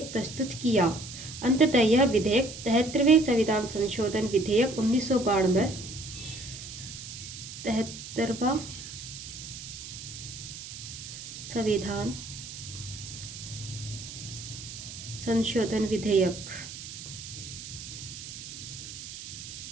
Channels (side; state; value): right; noise; hiss, 11 dB below the sound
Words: प्रस्तुत किया। अंततः यह विधेयक 73वें संविधान संशोधन विधेयक 1992 73वां संविधान संशोधन विधेयक